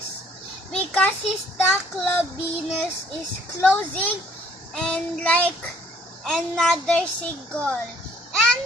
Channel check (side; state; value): both; normal; correlation 0.61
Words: because his club Venus is closing and like another single. And